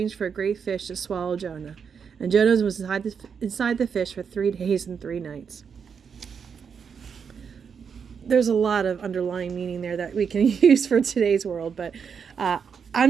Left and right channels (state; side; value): quieter; left; 6.6 dB